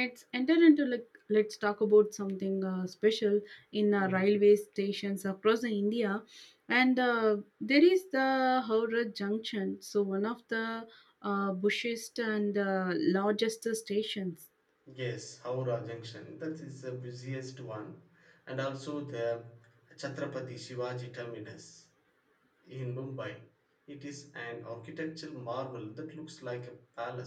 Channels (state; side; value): identical; both; correlation 1.00